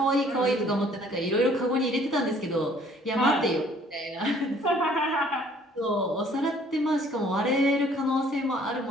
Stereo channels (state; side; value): normal; both; correlation 0.58